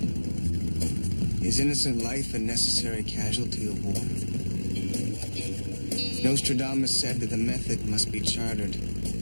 Is innocent life a necessary casualty of war? Nostradamus said that the method must be chartered,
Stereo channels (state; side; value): inverted; both; correlation -1.00